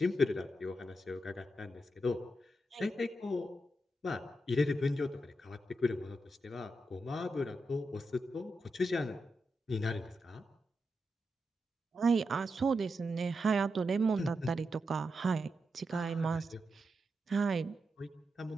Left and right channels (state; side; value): normal; both; correlation 0.86